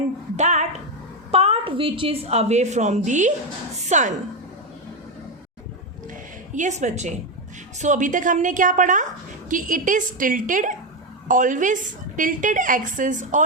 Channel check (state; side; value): normal; both; correlation 0.09